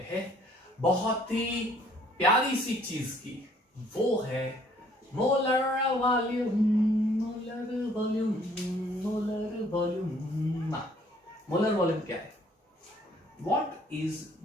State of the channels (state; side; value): normal; both; correlation 0.61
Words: हैं बहुत ही प्यारी सी चीज की, वो है molar volume. Molar volume, molar volume. Molar volume क्या है, व्हाट इज